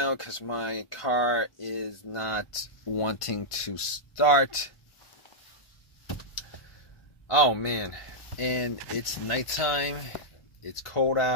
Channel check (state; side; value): late; right; 1.5 ms